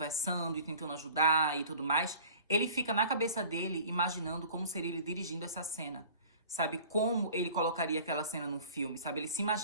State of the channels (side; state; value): both; inverted; correlation -0.46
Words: e tentando ajudar e tudo mais, ele fica na cabeça dele imaginando como seria ele dirigindo essa cena. Sabe, como ele colocaria aquela cena num filme, sabe? Ele se